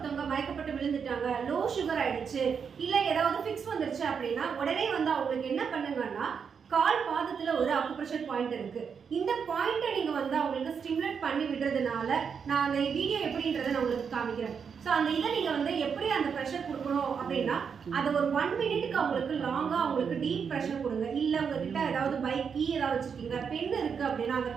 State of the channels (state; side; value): quieter; left; 6.5 dB